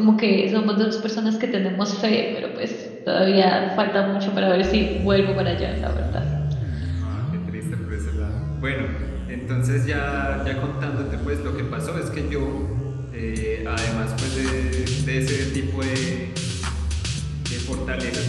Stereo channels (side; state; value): both; identical; correlation 1.00